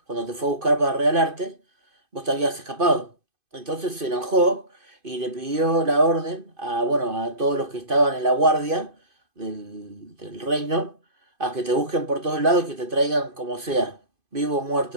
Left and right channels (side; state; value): left; late; 2.5 ms